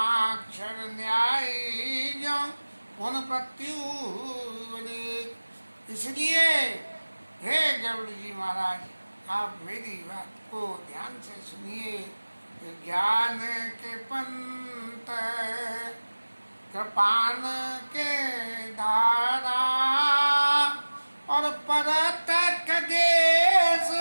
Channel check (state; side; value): inverted; both; correlation -1.00